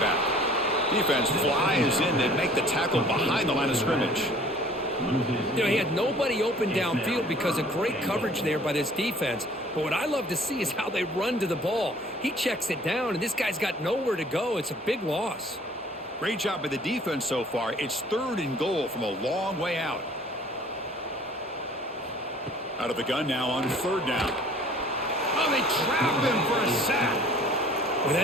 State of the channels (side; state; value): both; normal; correlation 0.52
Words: Defense flies in to make the tackle behind the line of scrimmage. You know, he had nobody open downfield because of great coverage there by this defense. But what I love to see is how they run to the ball. He checks it down, and this guy's got nowhere to go. It's a big loss. Great job by the defense so far. It's 3rd and goal from a long way out. Out of the gun now on 3rd down. Oh, they trap him for a sack. Well,